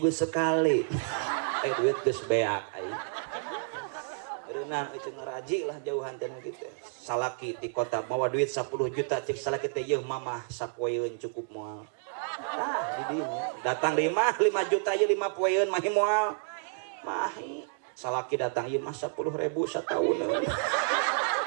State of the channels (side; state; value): left; silent; digital silence